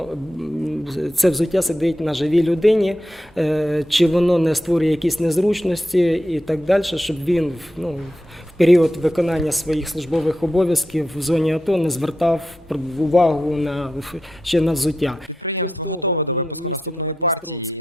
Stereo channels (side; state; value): both; normal; correlation 0.87